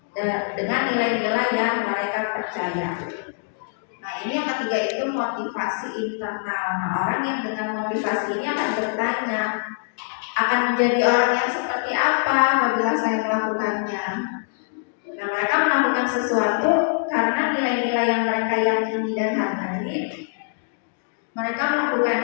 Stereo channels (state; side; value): silent; right; digital silence